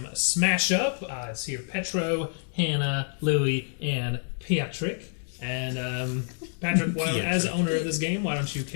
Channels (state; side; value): silent; right; 60 dB below the other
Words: Smash Up. It's here Petro, Hannah, Louie, and Patrick. And Patrick, as owner of this game, why don't you